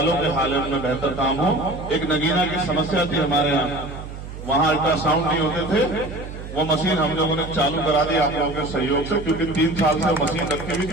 के हालत में बेहतर काम हो। एक नगीना की समस्या थी हमारे यहाँ, वहां अल्ट्रासाउंड नहीं होते थे, वो मशीन हम लोगों ने चालू करा दी आप लोगों के सहयोग से, क्योंकि 3 साल से मशीन रखी हुई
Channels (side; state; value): right; noise; hum, 11 dB below the sound